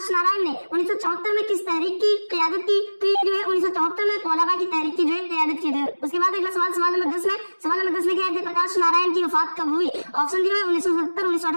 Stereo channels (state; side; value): inverted; both; correlation -1.00